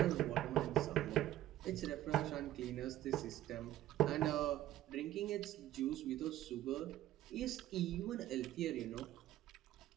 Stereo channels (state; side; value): quieter; left; 13.8 dB